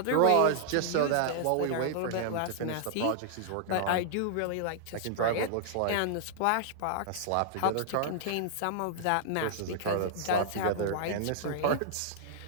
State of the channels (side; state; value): both; different; correlation -0.01